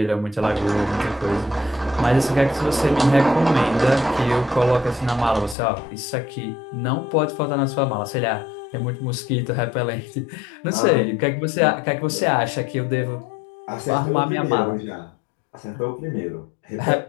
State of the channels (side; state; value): right; drops out; at 5.6 s